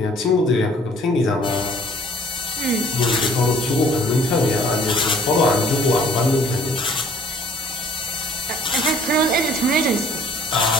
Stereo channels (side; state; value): both; normal; correlation 0.54